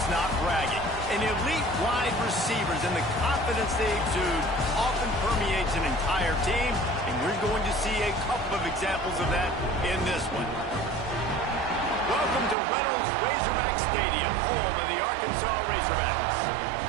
not bragging. And elite wide receivers and the confidence they exude often permeates an entire team, and we're going to see a couple of examples of that in this one. Welcome to Reynolds Razorback Stadium, home of the Arkansas Razorbacks.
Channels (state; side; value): drops out; left; at 12.6 s